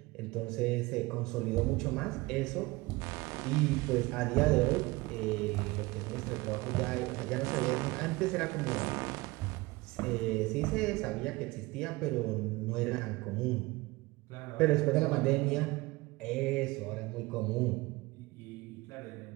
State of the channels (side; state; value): left; quieter; 22.1 dB